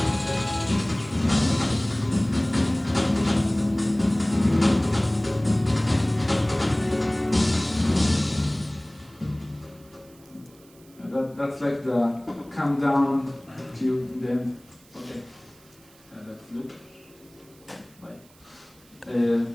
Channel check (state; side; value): noise; right; hiss, 28 dB below the sound